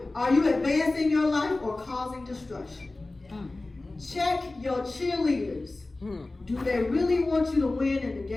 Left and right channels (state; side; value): quieter; right; 3.1 dB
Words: Are you advancing your life or causing destruction? Check your cheerleaders. Do they really want you to win in the